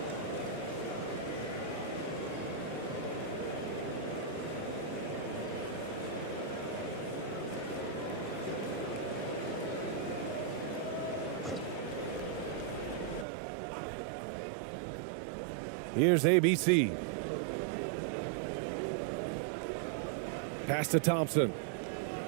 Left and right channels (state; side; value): drops out; left; at 13.2 s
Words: Here's ABC. Pass to Thompson.